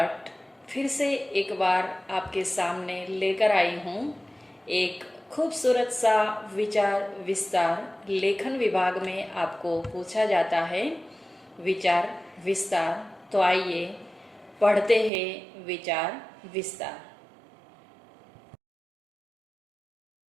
फिर से एक बार आपके सामने लेकर आई हूँ। एक खूबसूरत सा विचार विस्तार लेखन विभाग में आपको पूछा जाता है विचार विस्तार। तो आइए पढ़ते हैं विचार विस्तार।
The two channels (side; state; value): left; drops out; at 15.1 s